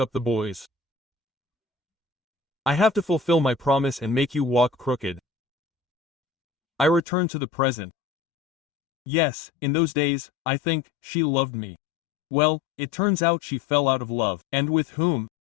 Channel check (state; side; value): drops out; right; at 7.0 s